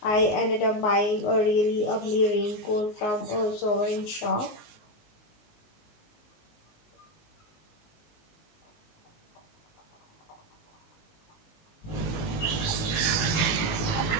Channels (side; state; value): right; late; 19 ms